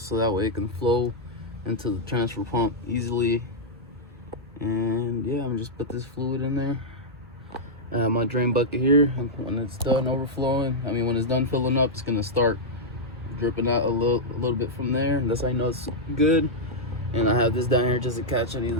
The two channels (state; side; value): normal; both; correlation -0.06